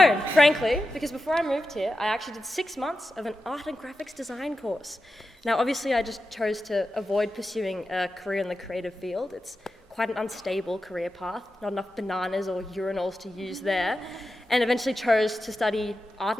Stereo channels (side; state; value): both; normal; correlation 0.91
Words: frankly, because before I moved here, I actually did 6 months of an art and graphics design course. Now, obviously, I just chose to avoid pursuing a career in the creative field. It's quite an unstable career path, not enough bananas or urinals to use there. And eventually chose to study